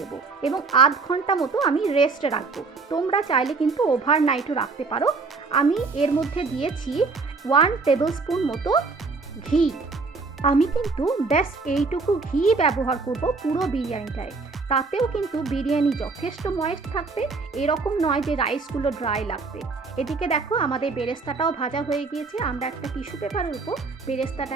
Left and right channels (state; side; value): quieter; left; 4.2 dB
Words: এবং আধ ঘন্টা মতো আমি রেস্টে রাখবো। তোমরা চাইলে কিন্তু ওভারনাইটও রাখতে পারো। আমি এর মধ্যে দিয়েছি 1 টেবিল স্পুন মতো ঘি। আমি কিন্তু ব্যাস এইটুকু ঘি ব্যবহার করব পুরো বিরিয়ানিটায়। তাতেও কিন্তু বিরিয়ানি যথেষ্ট ময়েস্ট থাকবে, এরকম নয় যে রাইসগুলো ড্রাই লাগবে। এদিকে দেখো আমাদের বেরেস্তাটাও ভাজা হয়ে গিয়েছে। আমরা একটা টিস্যু পেপারের উপর